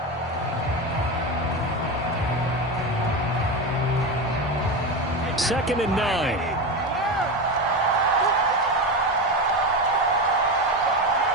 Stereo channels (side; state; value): both; normal; correlation 0.19